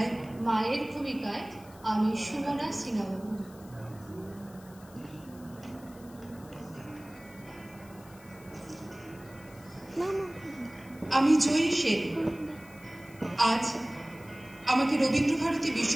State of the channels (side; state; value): left; noise; hiss, 24 dB below the sound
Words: মায়ের ভূমিকায় আমি সুমনা সিংহাবাবু। আমি জয়ী সেন। আজ আমাকে রবীন্দ্রভারতী